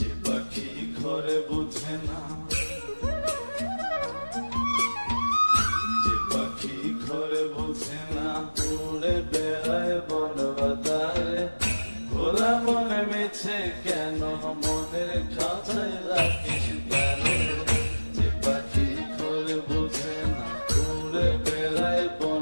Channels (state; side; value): inverted; both; correlation -1.00